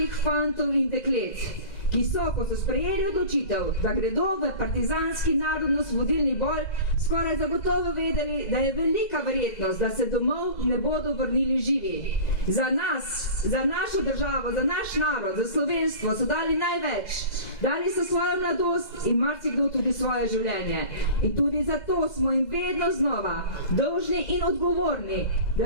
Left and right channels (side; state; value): right; late; 2.0 ms